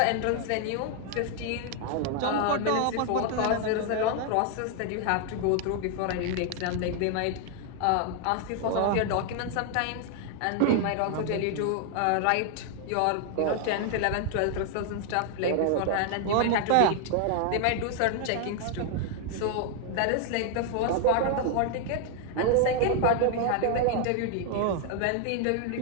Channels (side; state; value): both; different; correlation 0.00